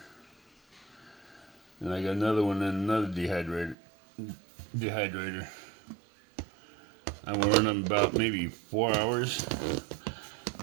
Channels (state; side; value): drops out; left; at 3.8 s